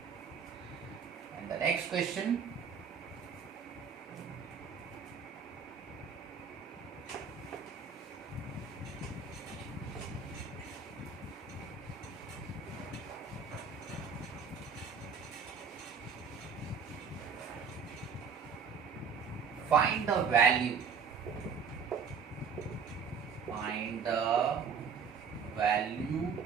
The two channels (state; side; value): quieter; left; 6.2 dB